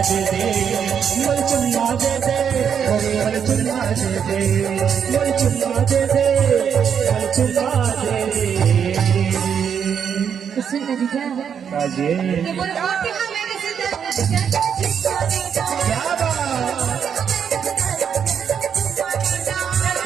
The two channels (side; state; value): left; quieter; 7.7 dB